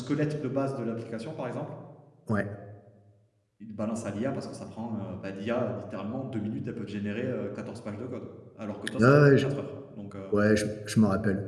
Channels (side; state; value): both; identical; correlation 1.00